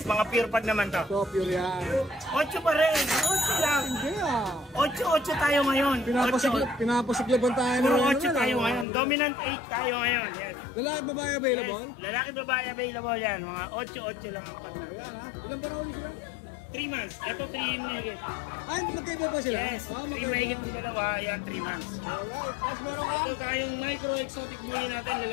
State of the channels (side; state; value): right; drops out; at 8.8 s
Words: mga pure pag naman to. Ito, pure yan. 8 pa rin. 8 lang. Hindi ah. 8 tayo ngayon. Pinapasiglaban tayo. Puro ng 8 tayo ngayon. Dominant 8 tayo ngayon. Yes. Lalaki babae available? Yes. Lalaki babae available yan. Mga 8 lang. Oh, yan ha. Ilan ba na ulit sila? 3 months. Ito 3 mahigit. Ay, magkaiba ba sila? Yes. Ah, 3 mahigit ng dalawa. Yan 3 months. Alright. Tapos meron ka? Ito tayong micro exotic bully natin